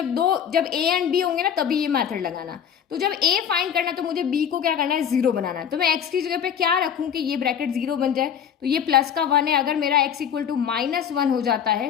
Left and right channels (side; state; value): right; quieter; 8.4 dB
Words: ए एंड बी होंगे ना तभी ये मेथड लगाना। तो जब ए फाइंड करना है तो मुझे बी को क्या करना है, जीरो बनाना है। तो मैं एक्स की जगह पे क्या रखूं कि ये ब्रैकेट जीरो बन जाए। तो ये प्लस का वन है, अगर मेरा x equal to minus one हो जाता